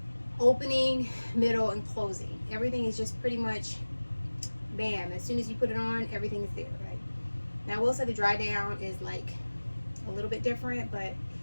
opening, middle, and closing. Everything is just pretty much bam. As soon as you put it on, everything is there, right? Now I will say the dry down is like a little bit different, but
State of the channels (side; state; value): both; inverted; correlation -1.00